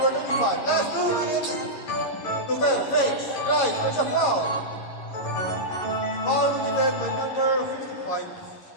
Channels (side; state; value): right; late; 11 ms